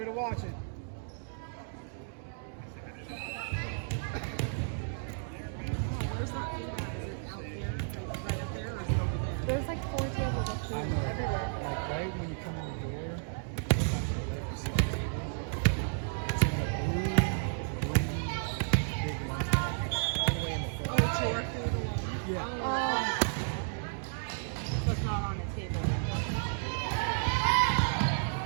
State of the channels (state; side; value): silent; left; digital silence